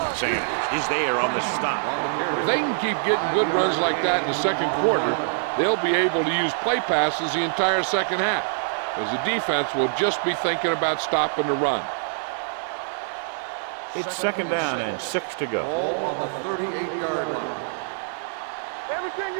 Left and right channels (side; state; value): left; silent; digital silence